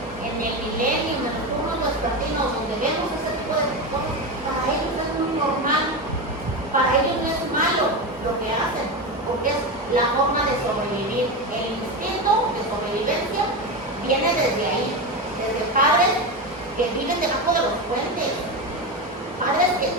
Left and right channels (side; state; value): both; normal; correlation 0.17